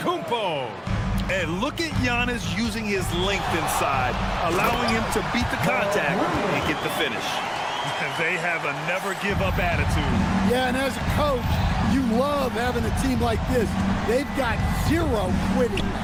And look at Giannis using his length inside, allowing him to beat the contact and get the finish. They have a never-give-up attitude. Yeah, and as a coach, you love having a team like this. They've got zero quitting.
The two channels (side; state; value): both; identical; correlation 1.00